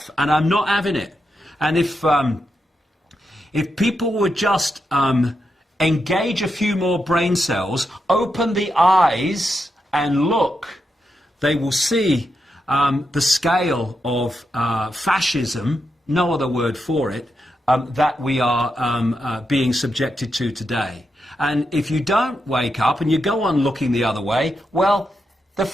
and I'm not having it. And if people would just engage a few more brain cells, open the eyes and look, they will see the scale of fascism, no other word for it, that we are being subjected to today. And if you don't wake up and you go on looking the other way, well, the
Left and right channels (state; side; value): normal; both; correlation 0.85